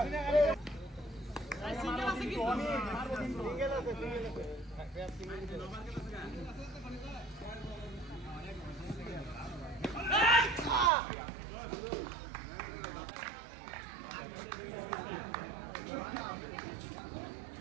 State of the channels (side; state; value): left; drops out; at 10.9 s